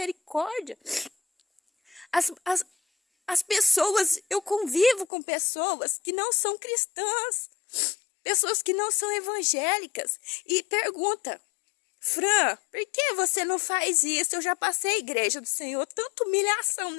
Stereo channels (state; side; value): drops out; right; at 5.1 s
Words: As pessoas, eu convivo com pessoas que não são cristãs, pessoas que não são evangélicas, e pergunta: Fran, por que você não faz isso? Eu já passei a igreja do Senhor, tanta